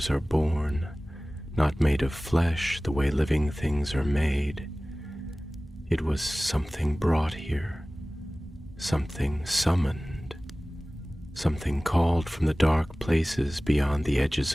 are born, not made of flesh the way living things are made. It was something brought here, something summoned, something called from the dark places beyond the edges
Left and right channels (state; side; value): normal; both; correlation 0.98